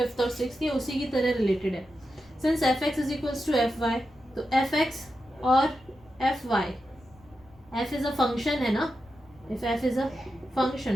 और सिक्स, ये उसी की तरह रिलेटेड है. Since f x is equals to F y, तो एफ एक्स और f y, f is a function है ना. If f is a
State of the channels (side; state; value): left; noise; rumble, 27 dB below the sound